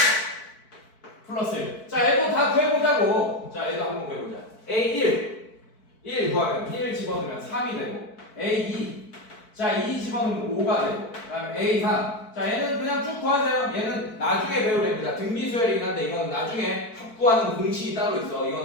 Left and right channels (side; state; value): right; late; 4.6 ms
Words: 플러스 1. 자, 얘도 다 구해보자고. 자, 얘도 한번 구해보자. A1 1 구하면 1 집어넣으면 3이 되고 A2 자, 2 집어넣으면 5가 되고 그 다음에 A3 자, 얘는 그냥 쭉 구하세요. 얘는 나중에 배우랍니다. 등비수열이긴 한데 이건 나중에 합구하는 공식이 따로 있어.